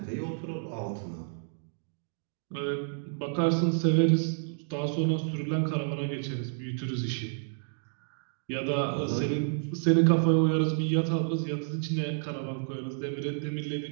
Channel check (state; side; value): silent; left; digital silence